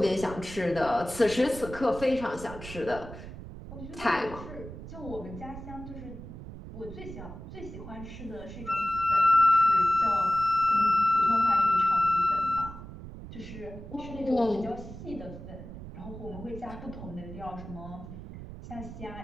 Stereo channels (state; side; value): noise; right; rumble, 12 dB below the sound